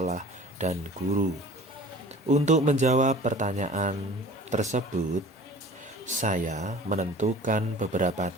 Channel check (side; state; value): both; normal; correlation 0.44